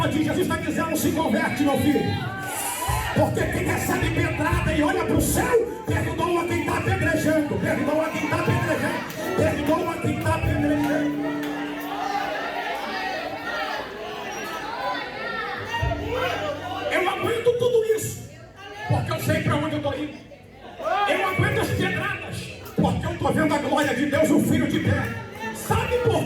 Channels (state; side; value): identical; both; correlation 1.00